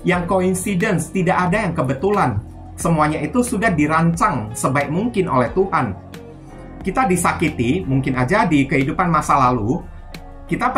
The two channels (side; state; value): both; identical; correlation 1.00